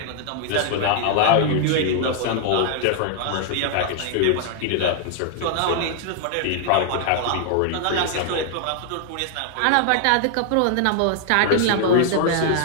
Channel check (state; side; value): different; both; correlation 0.00